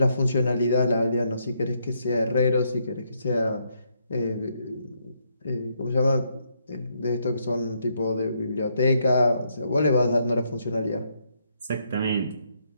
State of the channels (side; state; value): both; inverted; correlation -0.75